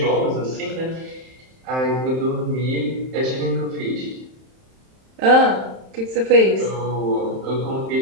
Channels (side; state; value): left; late; 31 ms